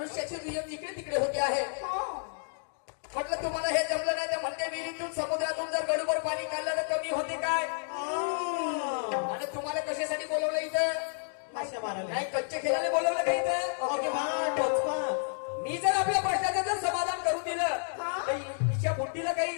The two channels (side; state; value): right; silent; digital silence